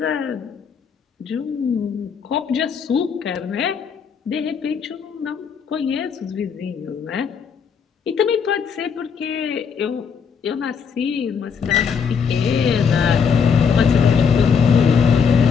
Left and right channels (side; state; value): right; quieter; 6.4 dB